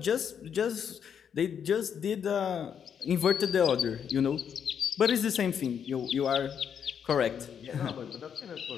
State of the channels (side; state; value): right; quieter; 7.9 dB